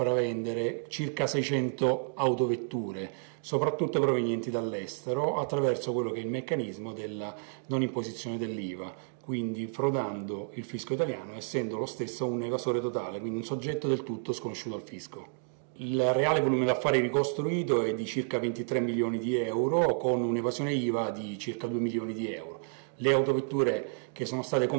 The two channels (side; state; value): left; silent; digital silence